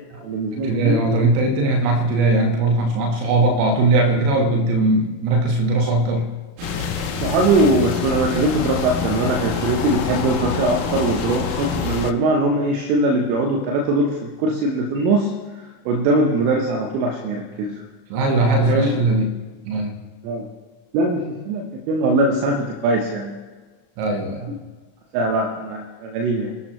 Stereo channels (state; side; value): late; left; 35 ms